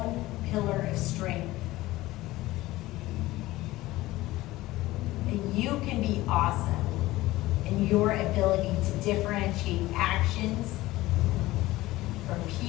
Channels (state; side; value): quieter; right; 17.8 dB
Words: pillar of strength. That you can be awesome in your ability to differentiate actions from